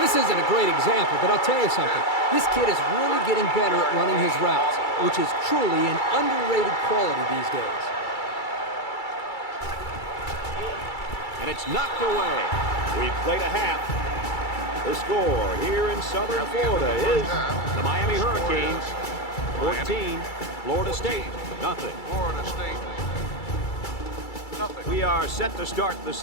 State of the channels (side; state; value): right; late; 2.3 ms